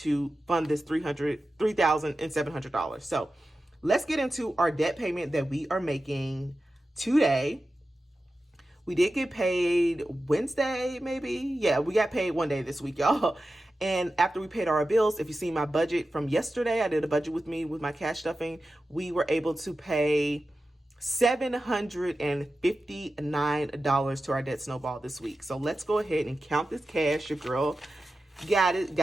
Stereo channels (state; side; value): normal; both; correlation 0.93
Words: fund this $3,700. So let's get into our debt payment that we are making today. We did get paid Wednesday, maybe. Yeah, we got paid one day this week, y'all. And after we paid our bills, if you see my budget from yesterday, I did a budget with my cash stuffing. We were able to pay $759 to our debt snowball this week. So let's go ahead and count this cash. Your girl got